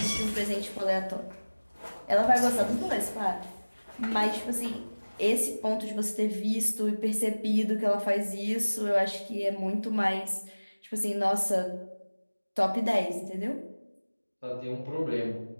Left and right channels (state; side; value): inverted; both; correlation -1.00